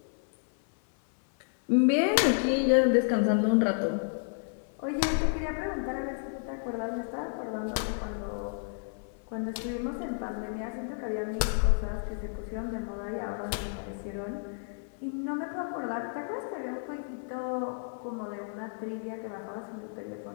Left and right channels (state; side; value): silent; right; 57 dB below the other